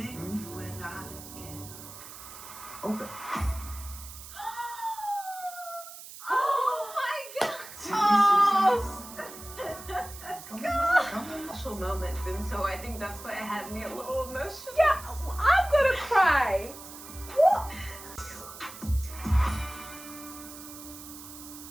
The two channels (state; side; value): noise; right; hiss, 14 dB below the sound